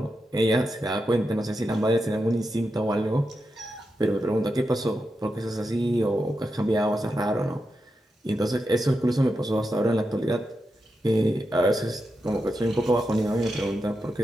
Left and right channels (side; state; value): both; normal; correlation 0.88